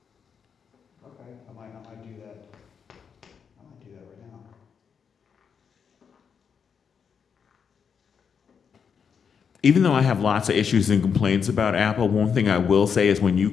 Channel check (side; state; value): right; quieter; 6.7 dB